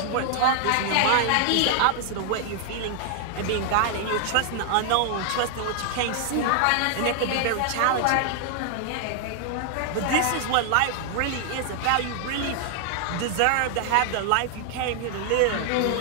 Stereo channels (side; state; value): both; different; correlation 0.00